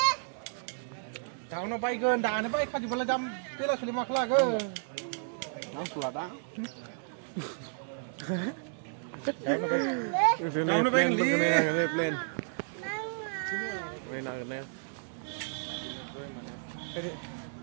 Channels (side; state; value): left; silent; digital silence